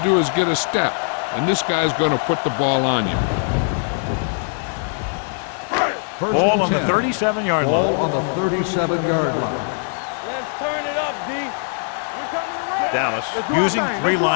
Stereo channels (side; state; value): right; silent; 65 dB below the other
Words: do is get a step, and this guy's going to put the ball on you. Ball on the 37-yard line. Ball on the 37-yard line. Let's turn it up, D. We're coming around. Dallas using three